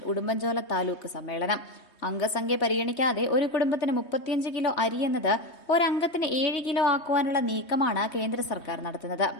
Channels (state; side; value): late; right; 3.2 ms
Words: Udumbanchola taluk സമ്മേളനം. അംഗസംഖ്യ പരിഗണിക്കാതെ ഒരു കുടുംബത്തിന് 35 കിലോ അരി എന്നത് ഒരംഗത്തിന് 7 കിലോ ആക്കുവാനുള്ള നീക്കമാണ് കേന്ദ്ര സർക്കാർ നടത്തുന്നത്.